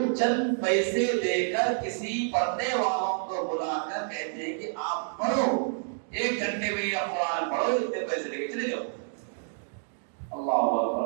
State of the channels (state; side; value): silent; left; digital silence